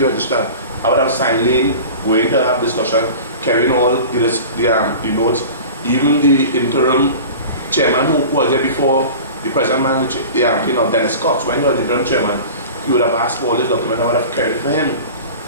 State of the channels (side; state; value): both; inverted; correlation -0.37